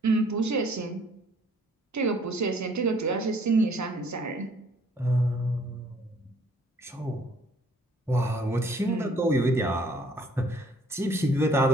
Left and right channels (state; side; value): normal; both; correlation 0.61